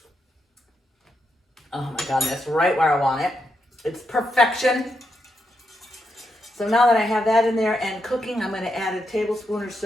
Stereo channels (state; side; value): normal; both; correlation 0.82